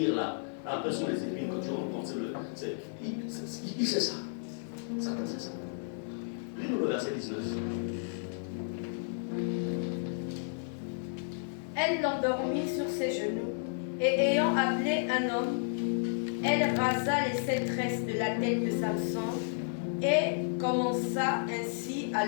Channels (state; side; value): silent; right; digital silence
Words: là, après ce sont les épines que tu rencontres. Il sait ça. Satan sait ça. Lis-nous le verset 19. Elle l'endormit sur ses genoux, et ayant appelé un homme, elle rasa les 7 tresses de la tête de Samson, et commença ainsi à